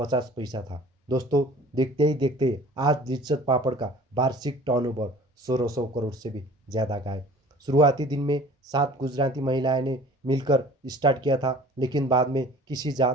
पैसा था। दोस्तों, देखते ही देखते आज लिज्जत पापड़ का वार्षिक टर्नओवर 1600 करोड़ से भी ज़्यादा का है। शुरुआती दिन में 7 गुजराती महिलाएं ने मिलकर स्टार्ट किया था, लेकिन बाद में किसी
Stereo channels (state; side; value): normal; both; correlation 0.47